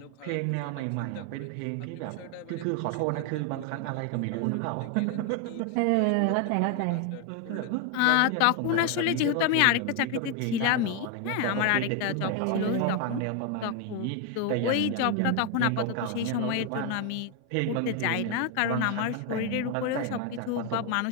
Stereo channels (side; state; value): both; different; correlation 0.01